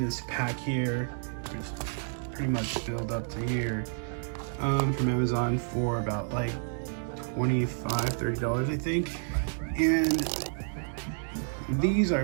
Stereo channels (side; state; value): left; silent; 58 dB below the other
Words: pack here, which pretty much filled up to here, from Amazon for about like $25–30 I think. And these are